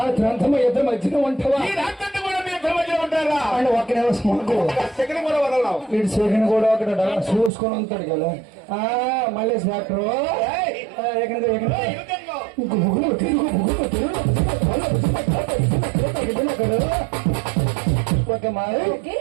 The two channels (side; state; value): left; drops out; at 7.5 s